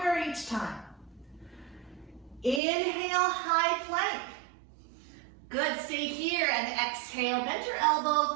each time. Inhale, high plank. Good, stay here and exhale, bend your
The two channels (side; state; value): left; drops out; at 2.6 s